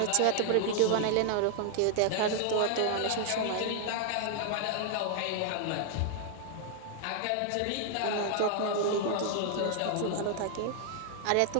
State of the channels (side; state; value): both; different; correlation 0.00